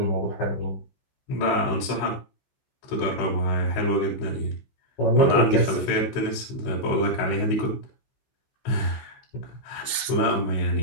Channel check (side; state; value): right; late; 14 ms